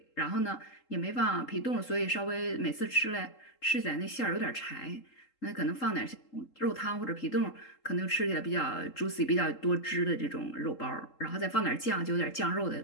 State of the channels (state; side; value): late; right; 3.8 ms